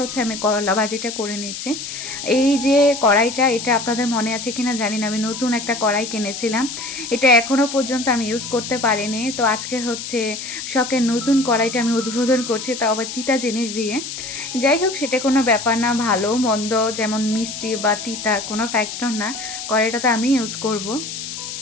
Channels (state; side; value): noise; left; hiss, 8 dB below the sound